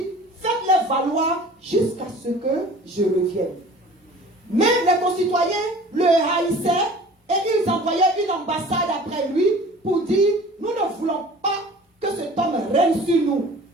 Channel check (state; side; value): normal; both; correlation 0.45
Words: faites-les valoir jusqu'à ce que je revienne. Mais les concitoyens le haïssaient et ils envoyaient une ambassade après lui pour dire, nous ne voulons pas que cet homme règne sur nous.